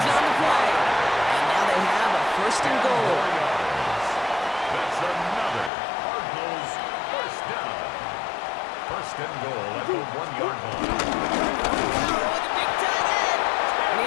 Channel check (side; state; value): right; drops out; at 5.7 s